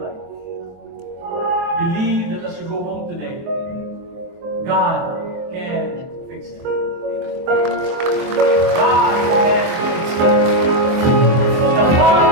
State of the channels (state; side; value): late; left; 23 ms